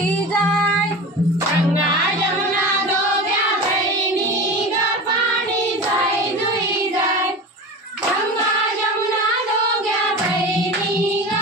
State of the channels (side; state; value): both; normal; correlation 0.31